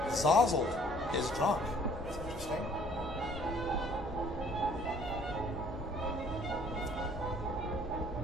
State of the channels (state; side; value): normal; both; correlation 0.57